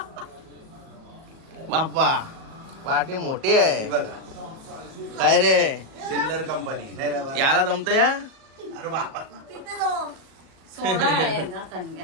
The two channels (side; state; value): left; late; 37 ms